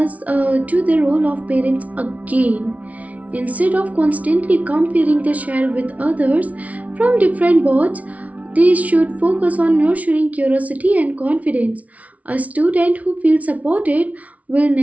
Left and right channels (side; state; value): left; late; 0.068 ms